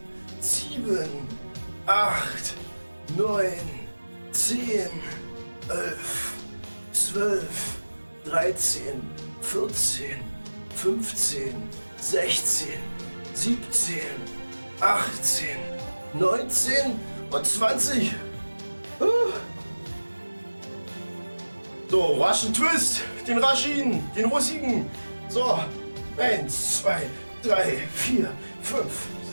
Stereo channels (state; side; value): inverted; both; correlation -1.00